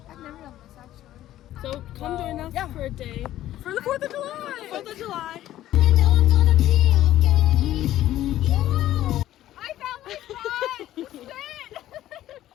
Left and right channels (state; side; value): quieter; right; 13.5 dB